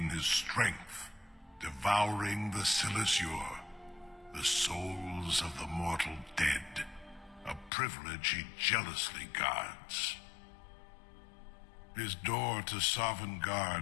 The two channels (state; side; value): drops out; right; at 7.7 s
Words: his strength, devouring the Silesure, the souls of the mortal dead, a privilege he jealously guards. His door to